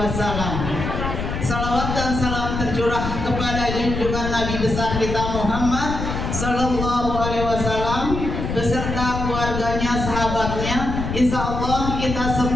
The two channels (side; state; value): left; noise; rumble, 4 dB below the sound